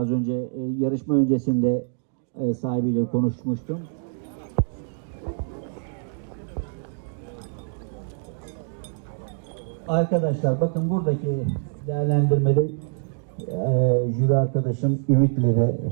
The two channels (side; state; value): left; silent; digital silence